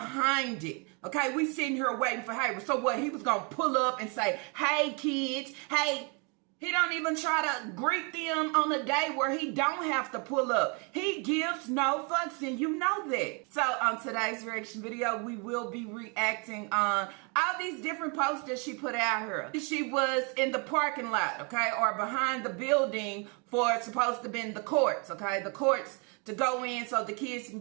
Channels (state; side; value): quieter; left; 33.7 dB